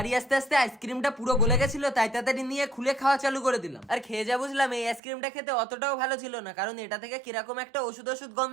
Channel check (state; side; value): drops out; left; at 5.0 s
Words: আসতে আসতে আইসক্রিমটা পুরো গলে গেছিল, তাই তাড়াতাড়ি নিয়ে খুলে খাওয়া চালু করে দিলাম। আর খেয়ে যা বুঝলাম এই আইসক্রিমটা খেতে অতটাও ভালো ছিল না, কারণ এটা থেকে কিরকম একটা ওষুধ